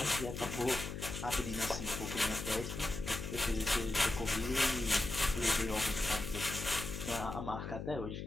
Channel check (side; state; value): left; noise; hum, 6 dB below the sound